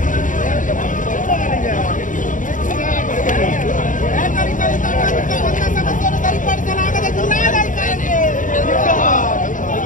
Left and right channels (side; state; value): right; late; 0.38 ms